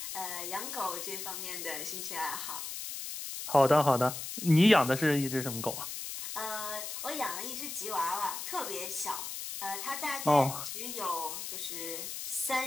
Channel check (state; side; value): noise; left; hiss, 6 dB below the sound